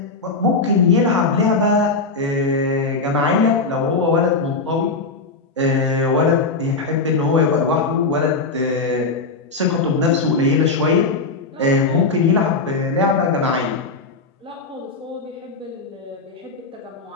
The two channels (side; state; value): right; quieter; 3.8 dB